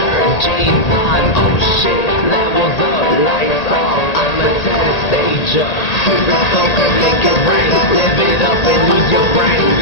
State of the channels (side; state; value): right; late; 1.8 ms